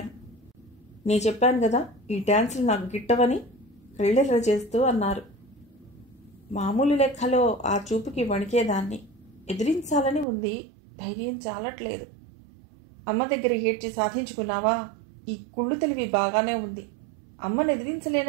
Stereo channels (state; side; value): drops out; left; at 10.2 s